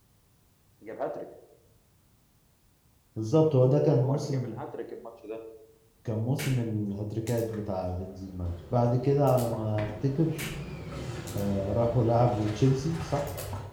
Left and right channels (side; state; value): both; identical; correlation 1.00